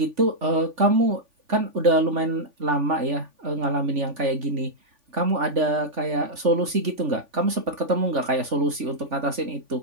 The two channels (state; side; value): late; left; 3.5 ms